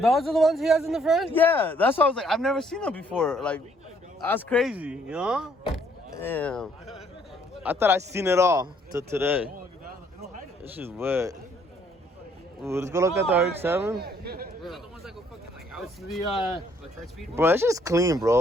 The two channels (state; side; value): normal; both; correlation 0.65